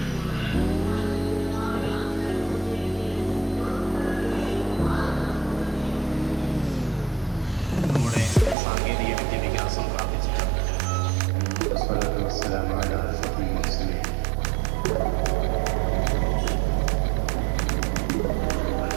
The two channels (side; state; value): left; drops out; at 8.6 s